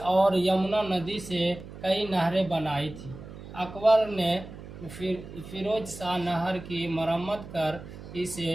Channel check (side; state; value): right; noise; hum, 14 dB below the sound